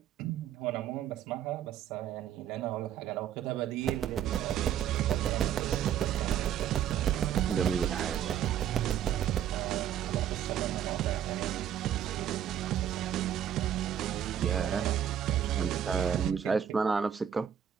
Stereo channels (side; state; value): left; quieter; 9.7 dB